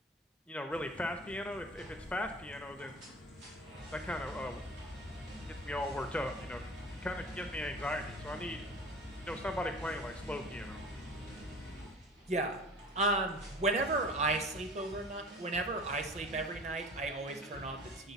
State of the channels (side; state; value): both; normal; correlation 0.40